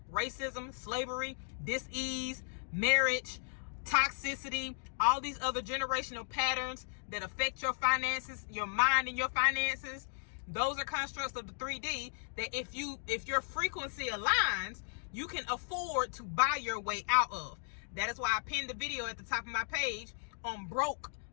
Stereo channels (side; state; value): right; silent; digital silence